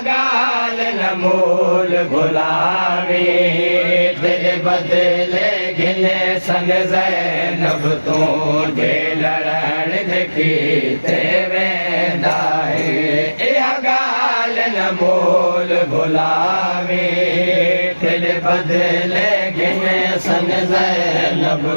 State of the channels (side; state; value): both; inverted; correlation -1.00